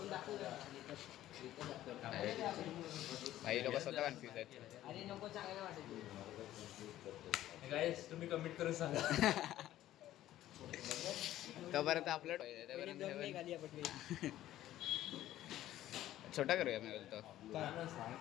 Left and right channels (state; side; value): quieter; right; 13.6 dB